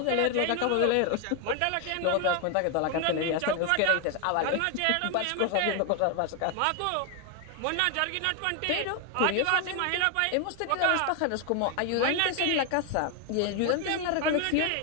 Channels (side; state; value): both; different; correlation 0.01